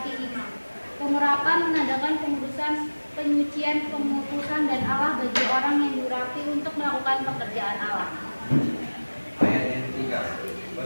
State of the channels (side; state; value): both; inverted; correlation -1.00